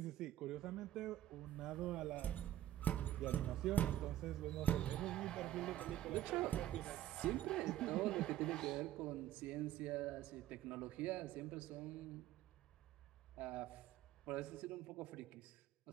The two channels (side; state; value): left; quieter; 13.0 dB